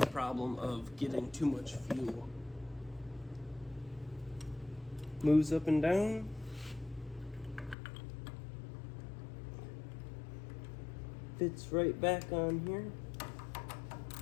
problem of getting too much fuel. Moves up and down. Fits right back on here.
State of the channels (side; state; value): right; drops out; at 7.8 s